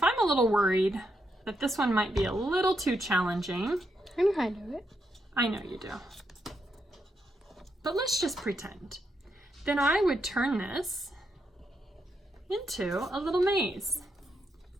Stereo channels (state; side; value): normal; both; correlation 0.81